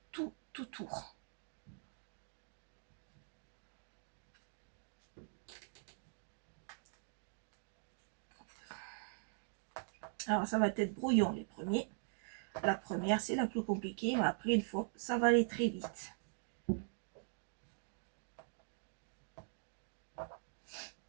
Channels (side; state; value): left; silent; digital silence